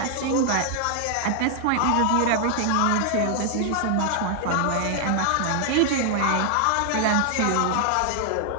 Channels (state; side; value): different; both; correlation 0.00